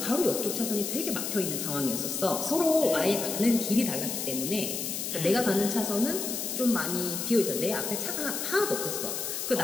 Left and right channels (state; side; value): noise; left; hiss, 3 dB below the sound